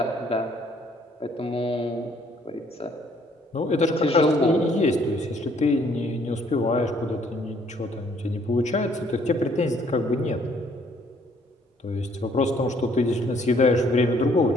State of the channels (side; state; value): both; normal; correlation 0.63